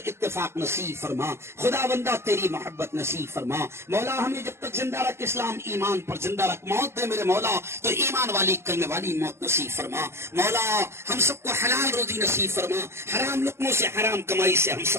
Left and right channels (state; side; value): late; left; 0.12 ms